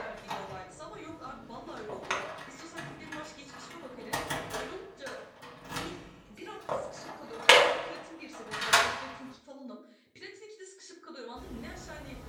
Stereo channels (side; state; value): both; identical; correlation 1.00